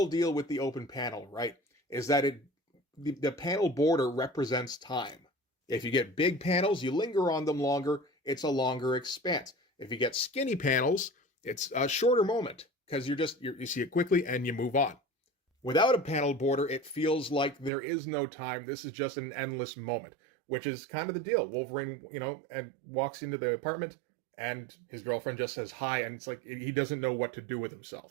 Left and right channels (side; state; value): left; drops out; at 17.7 s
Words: deal with the open panel, right? Is that the panel border represents time. If you get big panels, you linger on them longer. It's a longer expanse. If you get skinny panels, it's a shorter moment because you see it quickly and you move on. Without a panel border, it feels like there is no time. This is just an endless moment, which is kind of the deal. Wolverine, and walks into the apartment and his girlfriend just says hi, and it's like he doesn't know what to do with